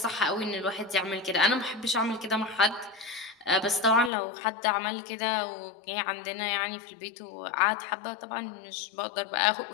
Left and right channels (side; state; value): right; drops out; at 4.1 s